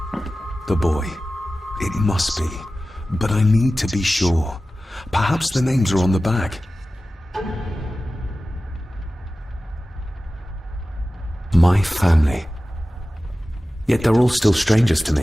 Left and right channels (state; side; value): normal; both; correlation 0.95